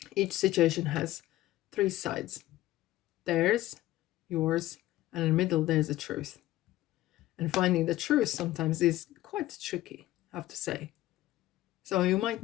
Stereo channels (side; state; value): right; quieter; 15.7 dB